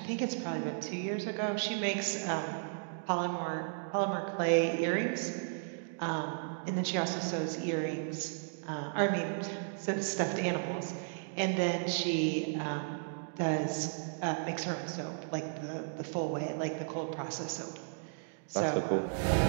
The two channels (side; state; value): left; silent; digital silence